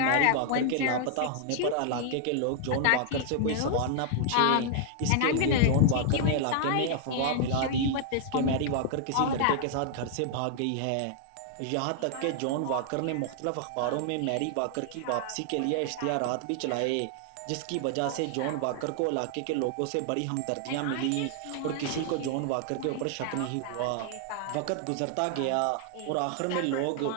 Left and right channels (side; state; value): both; different; correlation 0.00